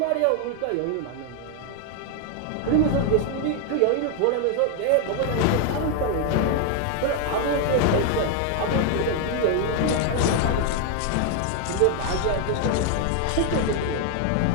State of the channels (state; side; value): different; both; correlation 0.01